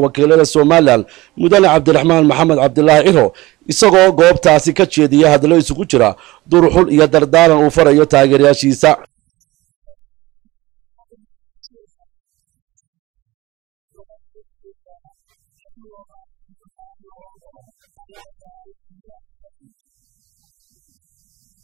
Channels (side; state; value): left; quieter; 19.6 dB